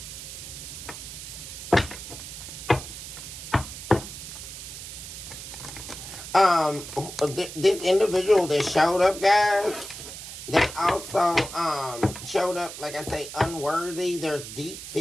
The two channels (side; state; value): right; noise; hiss, 11 dB below the sound